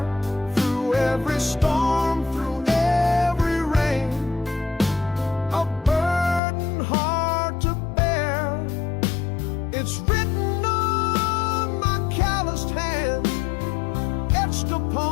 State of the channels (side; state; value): right; drops out; at 6.4 s